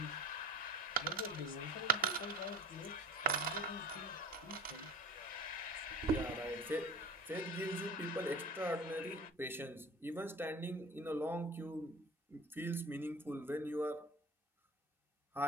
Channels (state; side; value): normal; both; correlation 0.38